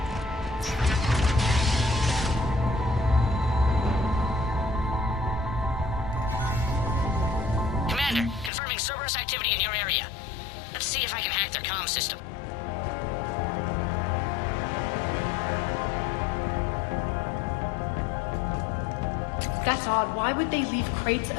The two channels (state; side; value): drops out; right; at 8.5 s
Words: Commander, confirming Cerberus activity in your area. Let's see if I can hack their comm system. That's odd. Why would they leave crates